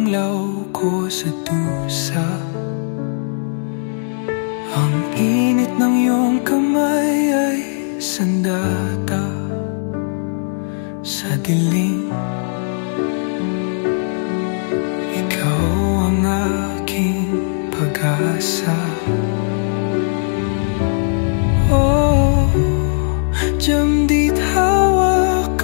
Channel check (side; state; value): right; silent; digital silence